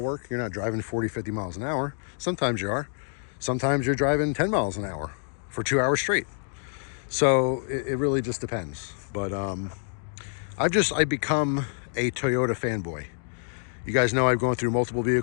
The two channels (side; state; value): right; silent; digital silence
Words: work. You're not driving 40, 50 miles an hour. Sometimes you are. Sometimes you're driving 10 miles an hour for 2 hours straight. So it really just depends. But I've become a Toyota fanboy. You guys know I've gone through multiple